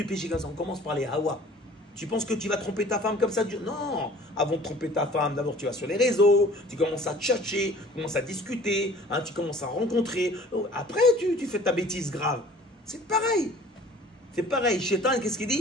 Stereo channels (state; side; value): normal; both; correlation 0.49